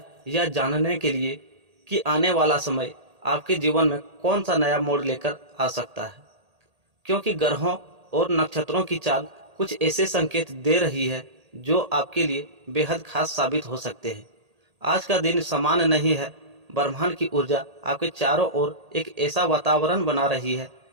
यह जानने के लिए कि आने वाला समय आपके जीवन में कौन सा नया मोड़ लेकर आ सकता है। क्योंकि ग्रहों और नक्षत्रों की चाल कुछ ऐसे संकेत दे रही है जो आपके लिए बेहद खास साबित हो सकते हैं। आज का दिन सामान्य नहीं है। ब्रह्मांड की ऊर्जा आपके चारों ओर एक ऐसा वातावरण बना रही है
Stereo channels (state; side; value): late; left; 1.8 ms